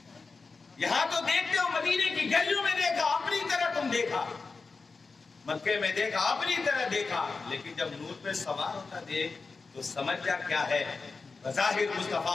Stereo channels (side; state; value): right; quieter; 4.3 dB